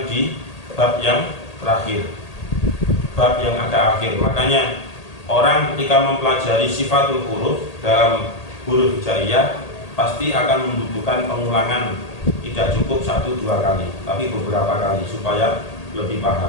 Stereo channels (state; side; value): late; right; 1.8 ms